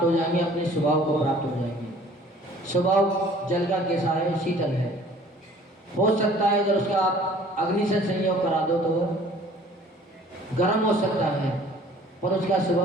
हो जाएंगे, अपने स्वभाव को प्राप्त हो जाएंगे। स्वभाव जल का कैसा है? शीतल है। हो सकता है अगर उसका आप अग्नि से संयोग करा दो तो गर्म हो सकता है, पर उसका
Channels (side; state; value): both; normal; correlation 0.52